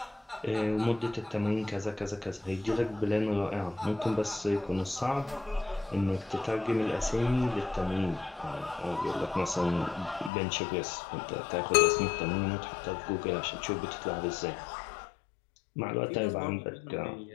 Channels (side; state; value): right; drops out; at 10.3 s